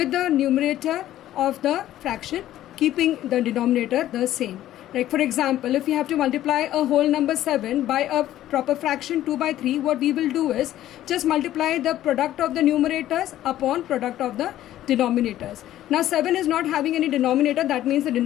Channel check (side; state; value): right; quieter; 13.2 dB